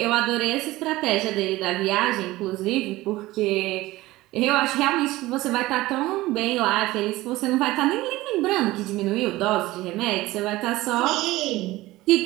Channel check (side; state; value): left; quieter; 18.3 dB